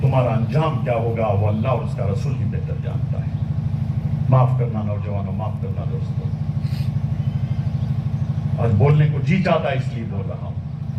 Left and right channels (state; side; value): identical; both; correlation 1.00